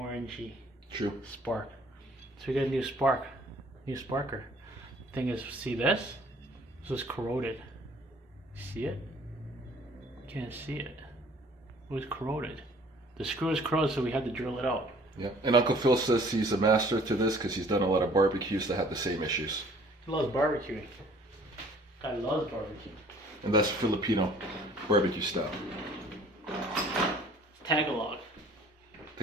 True. spark. So we got a new spark, new sparker. Thing is, see this? This was corroded. See it? Can't see it. It was corroded. The screw is corroded, so we had to drill it out. Yeah, and Uncle Phil says he's a master to this because he's done a lot of barbecues that had the same issues. He loves barbecuing. Guy loves barbecue. And that's Filipino barbecue style. Tagalog.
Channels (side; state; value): both; normal; correlation 0.55